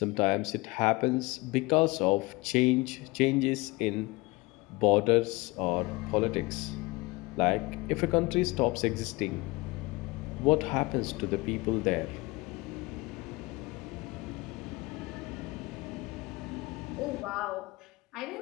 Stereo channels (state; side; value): quieter; right; 23.3 dB